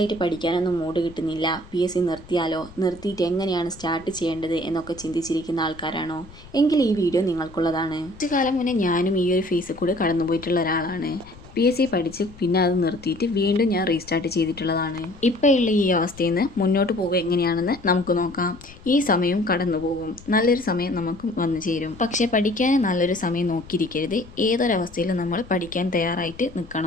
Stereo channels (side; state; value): left; noise; rumble, 20 dB below the sound